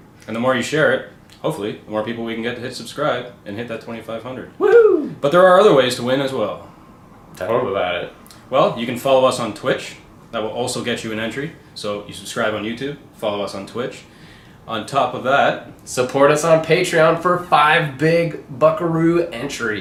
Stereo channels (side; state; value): both; identical; correlation 1.00